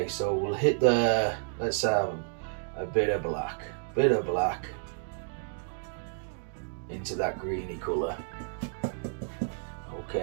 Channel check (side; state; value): left; silent; digital silence